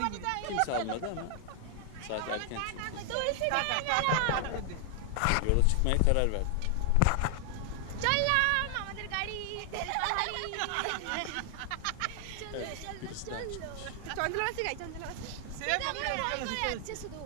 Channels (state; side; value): different; both; correlation 0.00